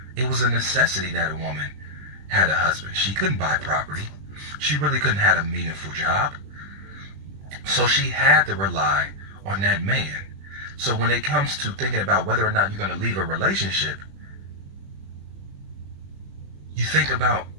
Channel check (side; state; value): left; late; 20 ms